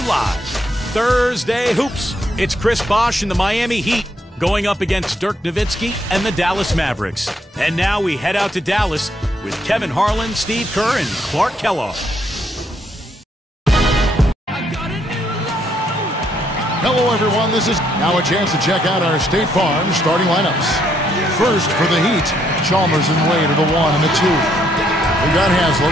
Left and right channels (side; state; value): both; normal; correlation 0.72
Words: live. Thursday Hoops. It's Chris Bosh and the Miami Heat going up against Dirk Nowitzki and the Dallas Mavericks. And now we head out to Dallas with Kevin Harlan, Steve Kerr, and Clark Kellogg. Hello, everyone. This is now a chance to check out our State Farm starting lineups. First for the Heat, Chalmers and Wade are the 1 and the 2. We got